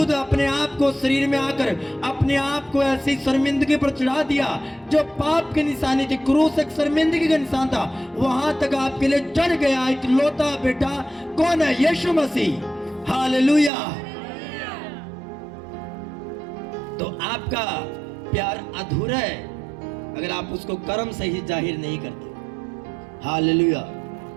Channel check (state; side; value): drops out; left; at 13.7 s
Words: अपने आप को शरीर में आकर अपने आप को ऐसी शर्मिंदगी पर चढ़ा दिया जो पाप की निशानी थी। क्रूस एक शर्मिंदगी का निशान था, वहां तक आपके लिए चढ़ गया इकलौता बेटा। कौन है? यीशु मसीह। हालेलुया। तो आपका प्यार अधूरा है अगर आप उसको कर्म से ही जाहिर नहीं करते। हालेलुया।